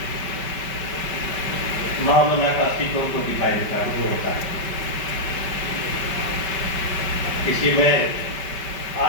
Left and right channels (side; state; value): right; late; 5.2 ms